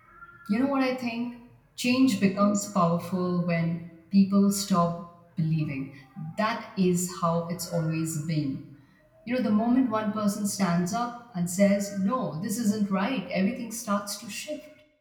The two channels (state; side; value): identical; both; correlation 1.00